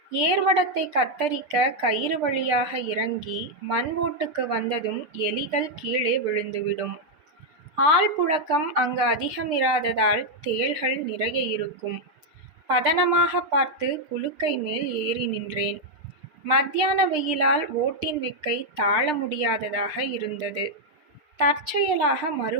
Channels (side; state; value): left; late; 6.6 ms